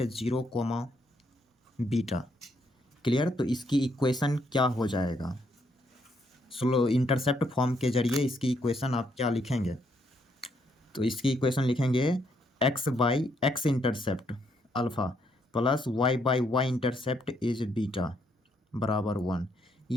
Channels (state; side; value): normal; both; correlation 0.73